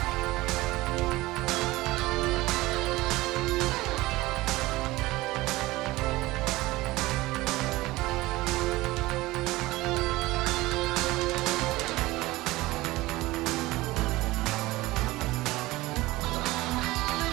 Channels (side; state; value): left; quieter; 19.3 dB